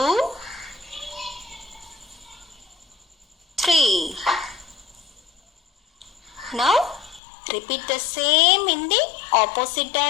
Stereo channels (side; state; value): right; drops out; at 7.2 s